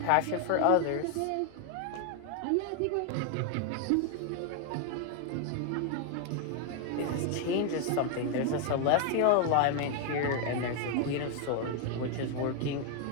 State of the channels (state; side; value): different; both; correlation 0.00